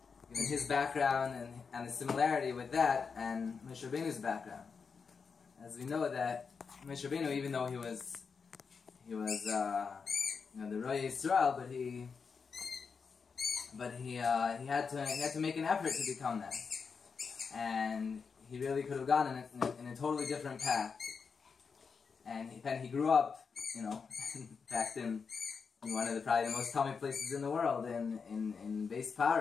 his background and the similarity with that and Moshe Rabbeinu's background. As we know that Moshe Rabbeinu, even though he was the Roy Yisrael, but he had to make an effort to become that, and he really could have gone in a totally different path. And then he grew up, back in one of probably the most common places in the world, in Beis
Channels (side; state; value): right; quieter; 5.5 dB